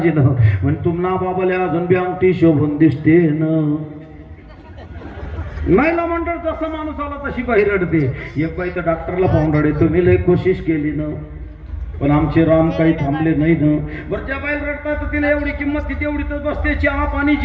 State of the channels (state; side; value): identical; both; correlation 1.00